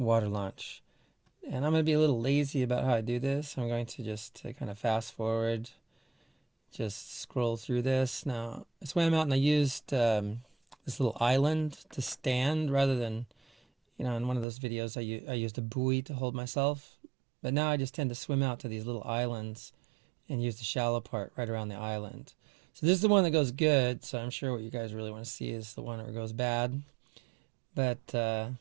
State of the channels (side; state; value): left; drops out; at 14.5 s